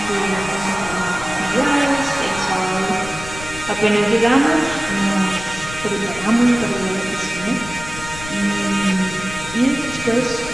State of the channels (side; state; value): left; noise; rumble, 13 dB below the sound